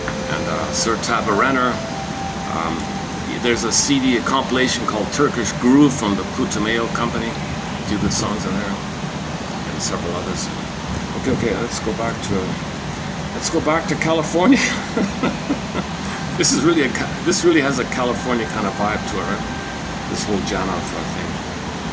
Sir Tabarenner. There's a CD, a compilation called Turkish Groove from the Putumayo Company. A few good songs in there, and several others. Okay, let's go back to California. This really has a California kind of vibe to it, right? This whole Janov thing.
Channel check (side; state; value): both; identical; correlation 1.00